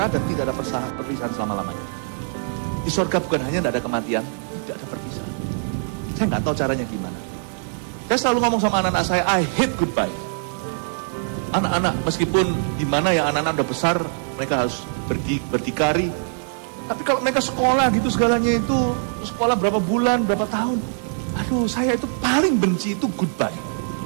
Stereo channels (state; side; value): silent; left; 64 dB below the other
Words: dan tidak ada perpisahan selama-lamanya. Di sorga bukan hanya tidak ada kematian, tidak ada perpisahan. Saya nggak tahu caranya gimana. Saya selalu ngomong sama anak-anak saya, I hate goodbye. Anak-anak, meskipun gimana ya, anak-anak udah besar, mereka harus berdikari. Tapi kalau mereka sekolah gitu segalanya itu, sekolah berapa bulan, berapa tahun. Aduh, saya itu paling benci itu goodbye.